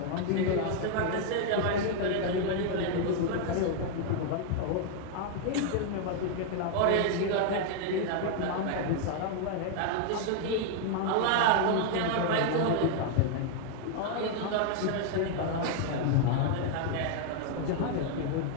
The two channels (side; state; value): both; different; correlation 0.00